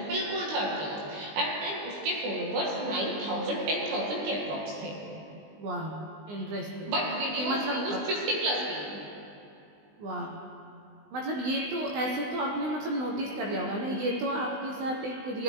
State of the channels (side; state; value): left; late; 20 ms